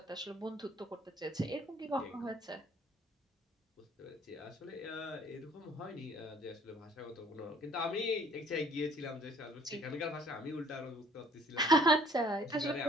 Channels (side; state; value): both; normal; correlation 0.57